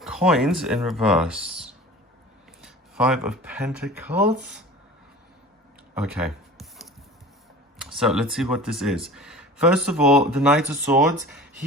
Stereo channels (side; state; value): both; normal; correlation 0.40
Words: Coins in reverse. Five of Pentacles. Okay. So let's see what this is. First of all, the Knight of Swords.